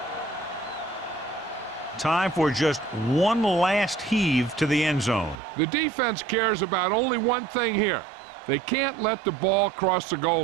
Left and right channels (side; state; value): left; drops out; at 5.4 s